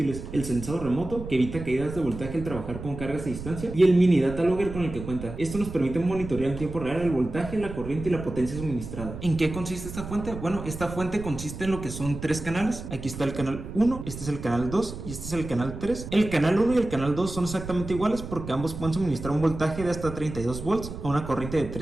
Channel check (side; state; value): right; noise; rumble, 10 dB below the sound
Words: el sensado remoto, que evita caídas de voltaje al trabajar con cargas a distancia, y el mini data logger con el que cuenta. Esto nos permite monitorear en tiempo real el voltaje, la corriente y la potencia suministrada. ¿En qué consiste esta fuente? Bueno, esta fuente consiste en lo que son tres canales. Aquí está el canal 1, este es el canal 2 y este es el canal 3. El canal 1 y el canal 2 son exactamente iguales porque ambos pueden suministrar un voltaje de hasta 32 volts a una corriente de